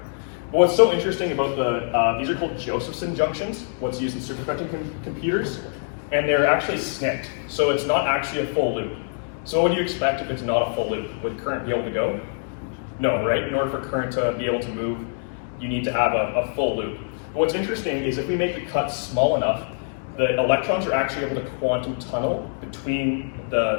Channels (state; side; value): silent; right; digital silence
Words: But what's so interesting about these are called Josephson junctions, what's used in superconducting computers, and they're actually snipped. So it's not actually a full loop. So what would you expect if it's not a full loop? Would current be able to go? No, right? In order for current to be able to move, you need to have a full loop. But what's interesting is if we make the cut small enough, the electrons are actually able to quantum tunnel between